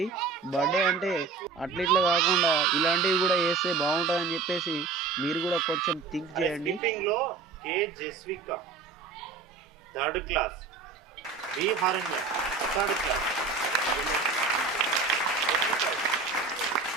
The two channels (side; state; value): left; quieter; 4.6 dB